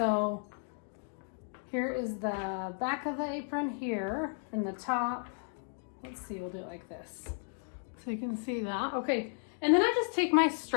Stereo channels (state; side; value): silent; right; 55 dB below the other